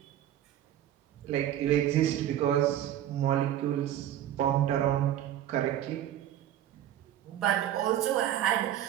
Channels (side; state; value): left; quieter; 11.7 dB